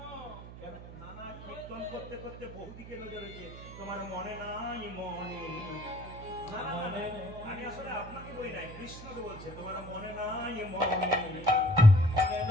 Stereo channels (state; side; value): noise; right; hum, 13 dB below the sound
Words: কেন? নানা কীর্তন করতে করতে বহুদিকে নজর হয়েছে। তোমার মনে নাই মনে? না, না, না, আমি আসলে আপনাকে বলি নাই, কৃষ্ণকে বলছে তোমার মনে নাই মনে? মনে